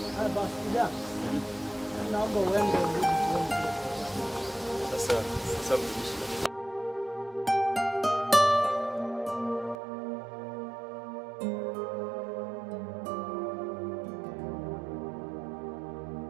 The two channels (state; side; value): drops out; left; at 9.8 s